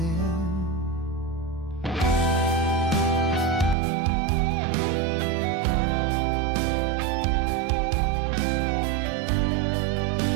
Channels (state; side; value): drops out; left; at 3.8 s